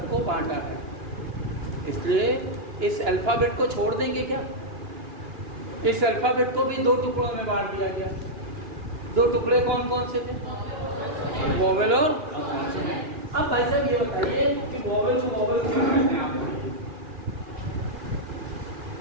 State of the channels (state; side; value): late; left; 2.9 ms